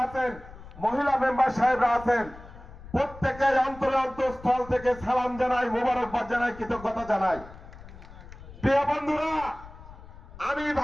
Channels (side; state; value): left; noise; rumble, 17 dB below the sound